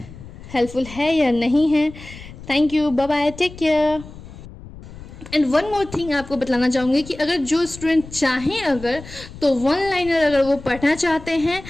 हेल्पफुल है या नहीं है। Thank you, bye bye, take care. And one more thing आपको बतलाना चाहूँगी कि अगर जो स्टूडेंट चाहें अगर तो 1 लाइनर अगर वो पढ़ना चाहते हैं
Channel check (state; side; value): noise; left; rumble, 16 dB below the sound